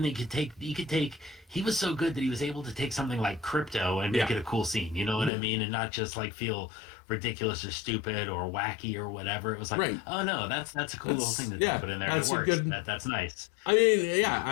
he was so good that he was able to take something like Crypto and make it a cool scene. You know what I mean? And not just like feel ridiculous or stupid or wacky or whatever. It was like, oh no, that's a cool little thing to put in there. That's it works. That's nice.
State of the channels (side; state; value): right; drops out; at 5.3 s